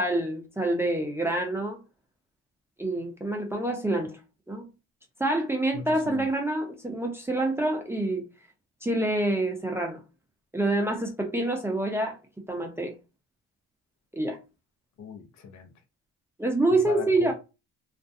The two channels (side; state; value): both; normal; correlation 0.70